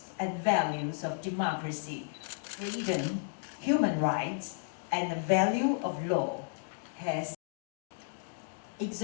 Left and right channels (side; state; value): right; silent; digital silence